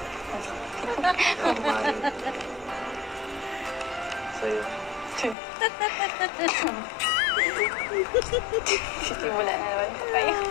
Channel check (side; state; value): right; drops out; at 5.4 s